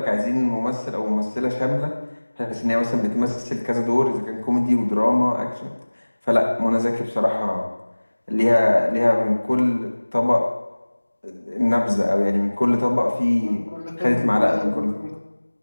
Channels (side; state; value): both; inverted; correlation -1.00